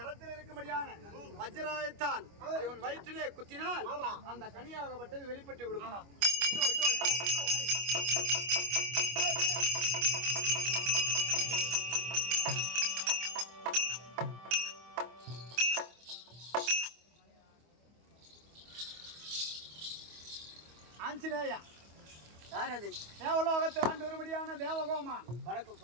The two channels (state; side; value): late; left; 25 ms